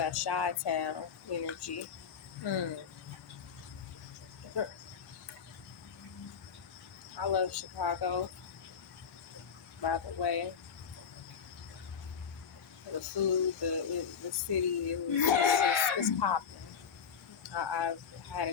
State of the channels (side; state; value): right; quieter; 6.8 dB